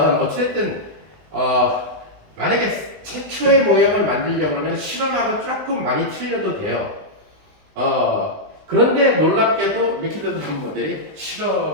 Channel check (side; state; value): left; late; 20 ms